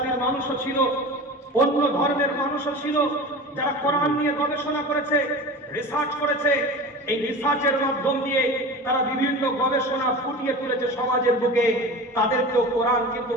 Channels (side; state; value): both; normal; correlation 0.33